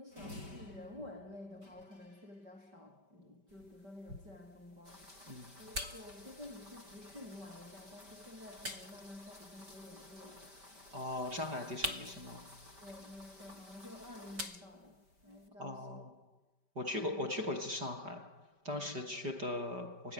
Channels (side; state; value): left; late; 5.1 ms